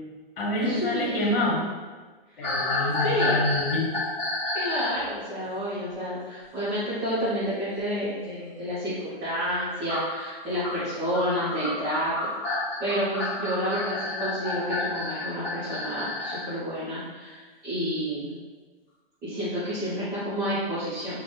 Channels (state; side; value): normal; both; correlation 0.08